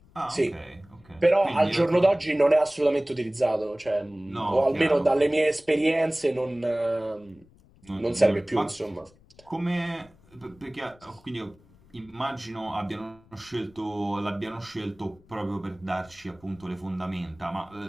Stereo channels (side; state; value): left; noise; rumble, 28 dB below the sound